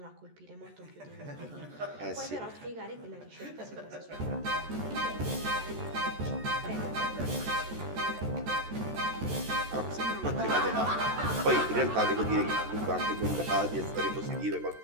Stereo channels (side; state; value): left; late; 13 ms